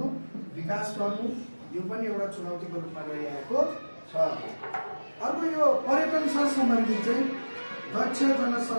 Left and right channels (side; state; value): both; inverted; correlation -1.00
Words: विकास गर्नु यो पनि एउटा चुनौतीको रूपमा रहिआएको छ अर्को यो पर्यटनसँग सम्बन्धित चाहिँ दक्ष